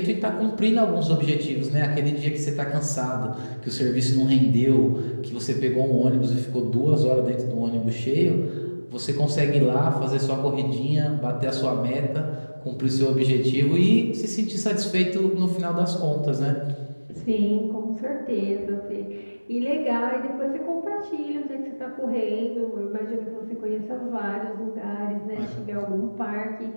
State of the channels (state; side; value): inverted; both; correlation -1.00